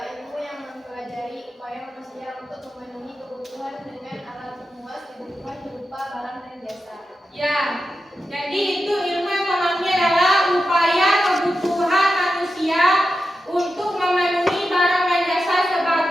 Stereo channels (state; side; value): normal; both; correlation 0.90